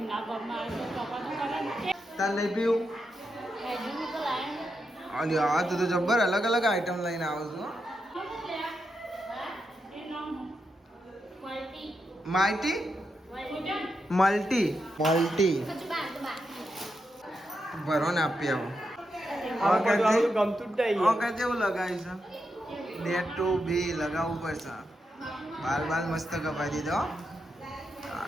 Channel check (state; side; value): normal; both; correlation 0.85